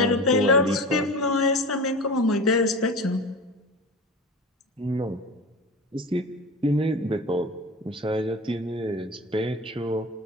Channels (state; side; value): normal; both; correlation 0.31